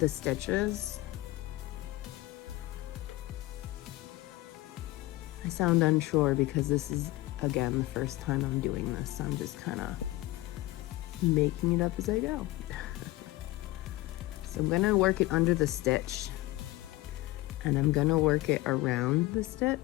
stitches. I sound unsure because this is, again, the first time I'm doing this. So I'm just kind of making it up as I go. So I'm gonna work it under the stitch and I'm gonna work it around the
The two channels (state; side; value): quieter; right; 18.2 dB